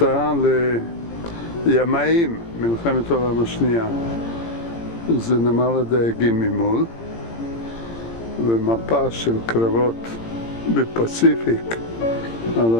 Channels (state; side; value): late; right; 17 ms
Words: לימאים, מלחמת העולם השנייה. זה נמל הדייגים ממול, ומפה של קרבות בפסיפיק על